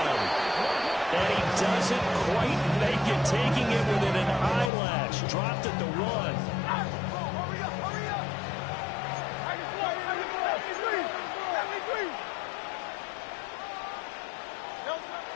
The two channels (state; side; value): drops out; right; at 4.7 s